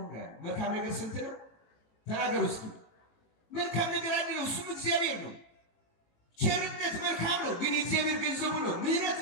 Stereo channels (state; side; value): late; right; 18 ms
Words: መልካም ነገር ስንት ነው? ተናገሩ እስኪ። መልካም ነገር አንድ ነው፣ እሱም እግዚአብሔር ነው። ቸርነት መልካም ነው፣ ግን የእግዚአብሔር ገንዘቡ ነው። ምሕረት